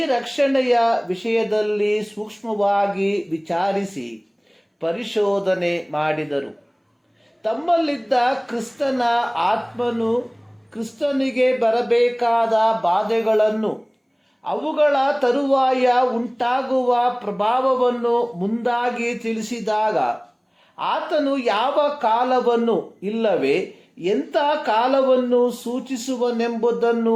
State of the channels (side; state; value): both; identical; correlation 1.00